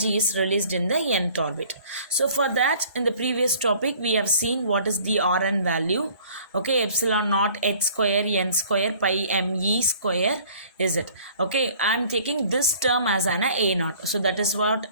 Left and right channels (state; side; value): inverted; both; correlation -0.52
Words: is released in the nth orbit. So for that, in the previous topic we have seen what is the Rn value. Okay, epsilon naught h square n square pi me square is it. Okay, I am taking this term as an a naught. So that is what